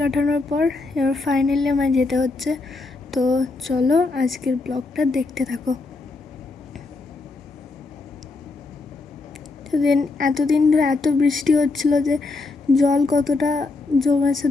পর এবার ফাইনালি আমায় যেতে হচ্ছে। তো চলো আজকের ব্লগটা দেখতে থাকো। এতদিন ধরে এত বৃষ্টি হচ্ছিল যে জল কতটা জমেছে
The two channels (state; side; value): quieter; right; 3.6 dB